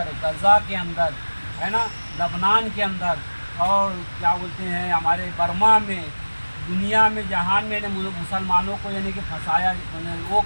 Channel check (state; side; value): inverted; both; correlation -1.00